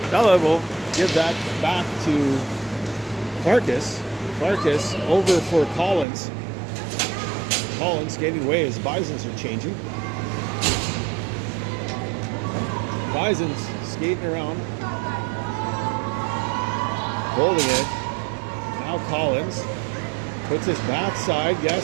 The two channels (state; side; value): drops out; left; at 6.1 s